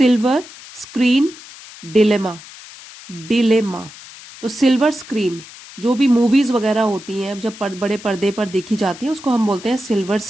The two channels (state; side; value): noise; left; hiss, 17 dB below the sound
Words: स्क्रीन डिलेमा। डिलेमा तो सिल्वर स्क्रीन, जो भी मूवीज वगैरह होती हैं जब बड़े पर्दे पर देखी जाती हैं उसको हम बोलते हैं सिल्वर